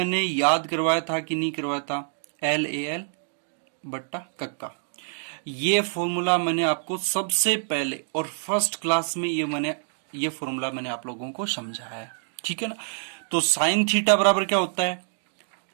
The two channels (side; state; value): left; silent; digital silence